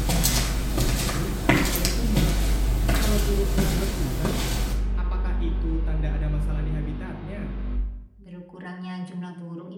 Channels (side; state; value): both; identical; correlation 1.00